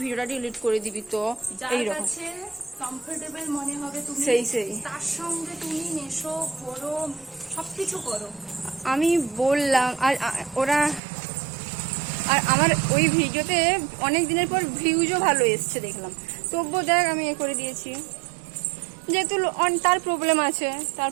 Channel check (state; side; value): drops out; left; at 11.0 s